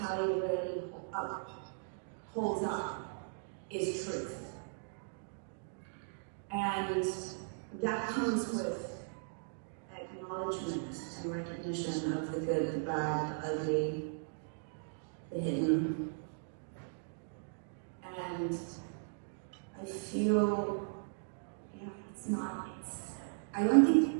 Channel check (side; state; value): left; silent; digital silence